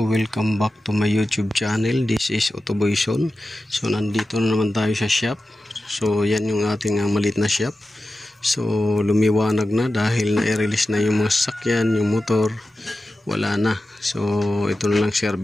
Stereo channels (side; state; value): both; normal; correlation 0.93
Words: welcome back to my YouTube channel. This is Autoboyson. So nandito na naman tayo sa shop. So yan yung ating maliit na shop. So lumiwanag na dahil na-release na yung mga sasakyan, yung motor. Wala na. So ito na lang